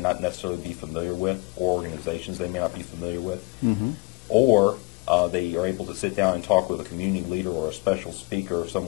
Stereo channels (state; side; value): quieter; right; 26.1 dB